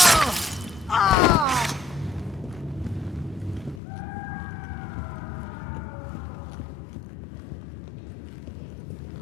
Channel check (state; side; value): drops out; right; at 3.8 s